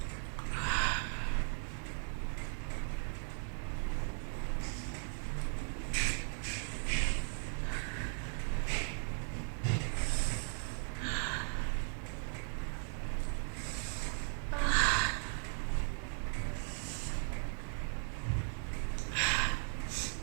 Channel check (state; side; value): silent; left; 53 dB below the other